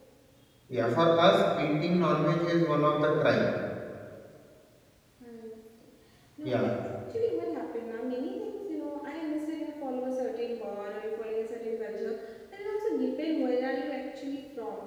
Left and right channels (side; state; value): both; identical; correlation 1.00